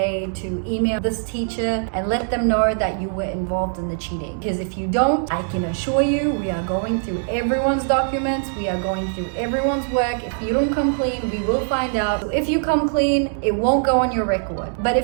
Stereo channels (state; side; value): silent; left; digital silence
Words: to email this teacher and let them know that you were involved in the cheating. Because if you don't, I can assure you, we are going through everyone's documents. We are going through everyone's work. If you don't come clean, we will find out. So if you come clean, it won't go on your record. But